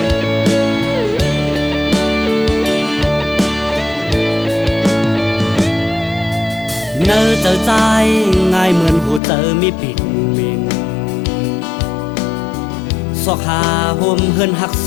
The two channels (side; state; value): right; drops out; at 9.2 s